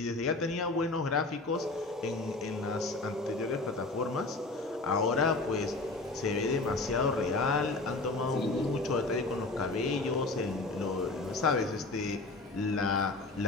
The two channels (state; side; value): quieter; right; 3.3 dB